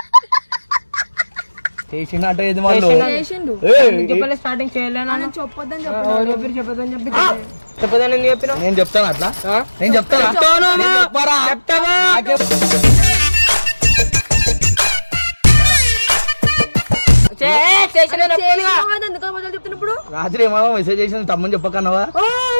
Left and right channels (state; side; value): inverted; both; correlation -1.00